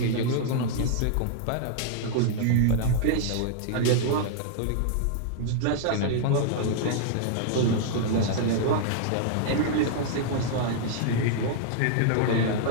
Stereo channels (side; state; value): both; different; correlation -0.01